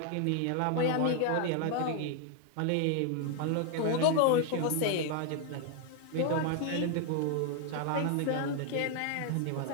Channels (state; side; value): different; both; correlation 0.00